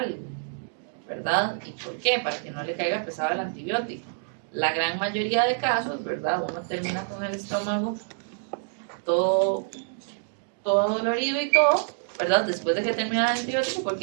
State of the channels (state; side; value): silent; left; digital silence